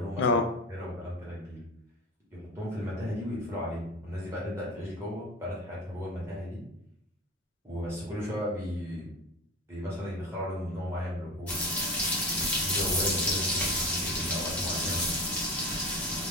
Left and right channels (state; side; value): normal; both; correlation 0.29